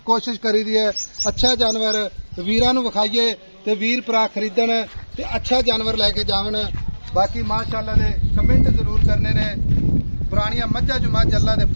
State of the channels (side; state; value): both; inverted; correlation -1.00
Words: कोशिश करी दी है। अच्छा जानवर वीरां नूं विखाइए ते वीर भरा खरीदण ते अच्छा जानवर लैके जावन। बाकी माशाल्लाह दे कमेंट जरूर करने ने। पुरानियां मज्झां जो मझ अल्लाह दे